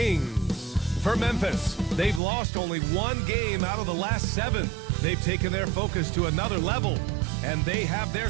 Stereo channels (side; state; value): left; drops out; at 2.2 s